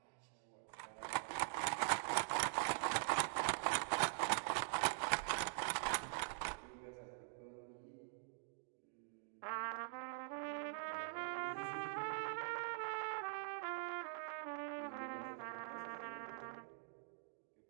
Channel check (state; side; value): silent; left; digital silence